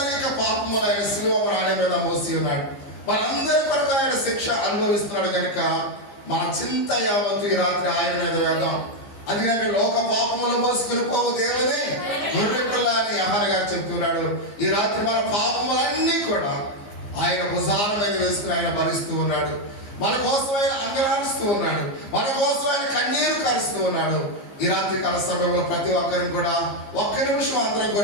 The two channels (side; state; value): right; late; 15 ms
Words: యొక్క పాపములు ఆయన శిలువ రాణి మీద మోసి ఉన్నాడు. మనందరి కొరకు ఆయన శిక్ష అనుభవిస్తున్నాడు కనుక మన చింత యావత్తు ఈ రాత్రి ఆయన మీద వేద్దాం. అందుకని లోక పాపములు మోసుకుని పోవు దేవుని గొర్రెపిల్ల అని యోహాను గారు చెప్తున్నాడు. ఈ రాత్రి మన పాపములన్నీ కూడా ఆయన భుజాల మీద వేసుకుని ఆయన భరిస్తూ ఉన్నాడు. మన కోసం ఆయన అంగలారుస్తూ ఉన్నాడు, మన కోసం ఆయన కన్నీరు కరుస్తూ ఉన్నాడు. ఈ రాత్రి కాల సమయంలో ప్రతి ఒక్కరిని కూడా ఒక్క నిమిషం అందరం